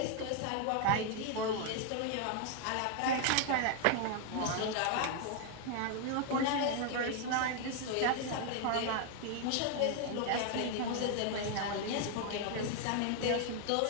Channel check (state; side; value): different; both; correlation 0.00